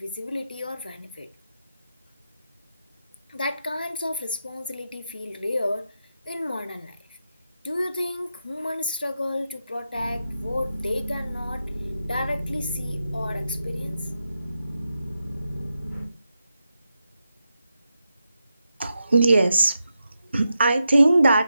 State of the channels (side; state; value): both; inverted; correlation -0.87